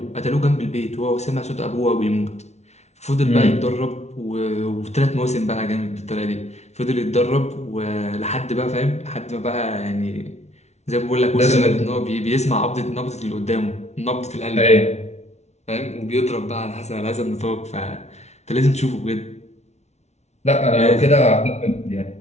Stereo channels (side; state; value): right; late; 0.32 ms